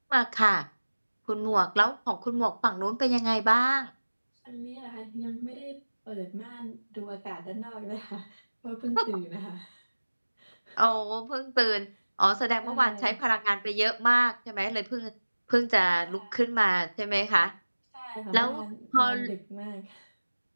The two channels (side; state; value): both; inverted; correlation -1.00